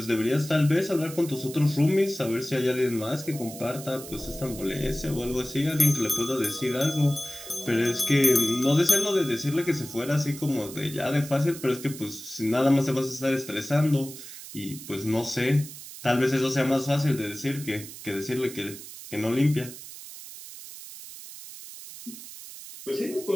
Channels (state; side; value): noise; right; hiss, 13 dB below the sound